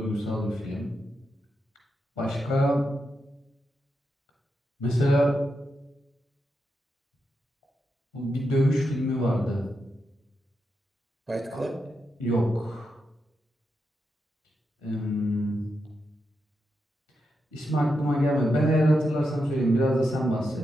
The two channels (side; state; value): both; normal; correlation 0.85